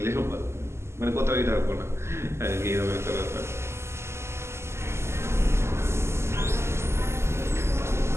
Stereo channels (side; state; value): left; late; 0.13 ms